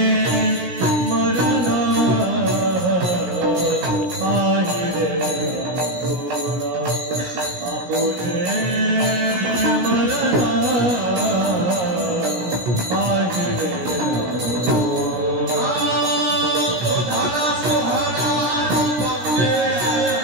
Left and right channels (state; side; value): late; left; 17 ms